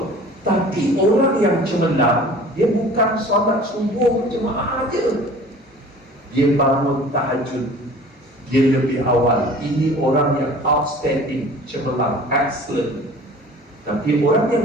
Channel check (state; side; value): normal; both; correlation 0.45